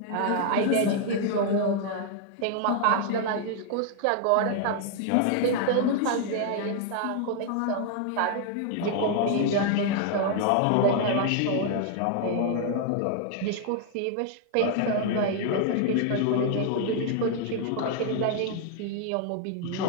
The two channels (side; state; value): both; different; correlation 0.00